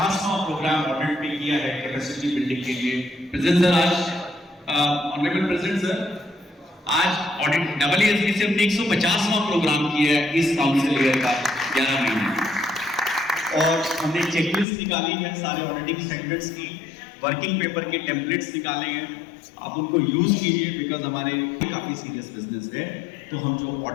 प्रोग्राम ऑडिट में किया है कैपेसिटी बिल्डिंग के लिए। प्रेजेंट सर, आज ऑनरेबल प्रेसिडेंट सर, आज ऑडिट AASB से हमने 150वां प्रोग्राम किया है इस काउंसिल ईयर का 11 महीने, और हमने चेकलिस्ट निकाली है सारे ऑडिटिंग स्टैंडर्ड्स की, वर्किंग पेपर के टेम्पलेट्स निकाले हैं। आप उनको यूज कीजिए, बिकॉज हमारे काफी सीरियस बिजनेस है, तो हम जो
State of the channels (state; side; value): drops out; right; at 14.7 s